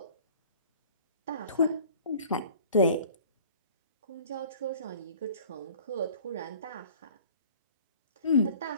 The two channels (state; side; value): inverted; both; correlation -0.49